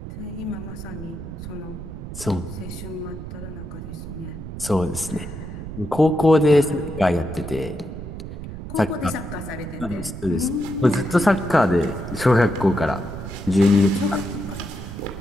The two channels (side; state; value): right; noise; rumble, 10 dB below the sound